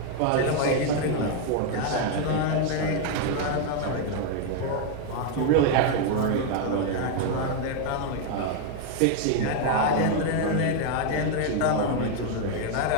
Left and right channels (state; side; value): different; both; correlation 0.01